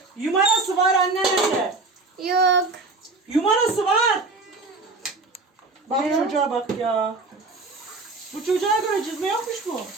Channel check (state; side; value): quieter; left; 3.6 dB